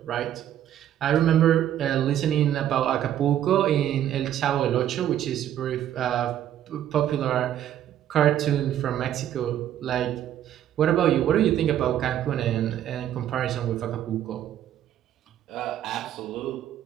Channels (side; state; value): left; quieter; 11.2 dB